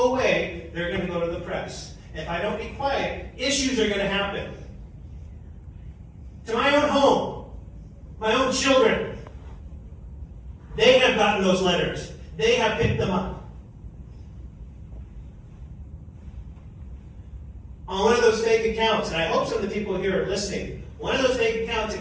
away, they're going to go to the press. If I don't be quiet, issues are going to happen. To my own home, my own children, they have gotten those letters. They have picked them up. On one of those fake accounts, and I hope some of the people here are listening, one of those fake accounts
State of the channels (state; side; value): identical; both; correlation 1.00